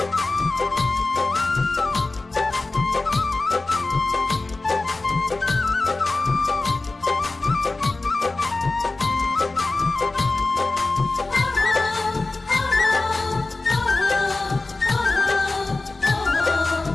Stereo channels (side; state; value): right; quieter; 3.3 dB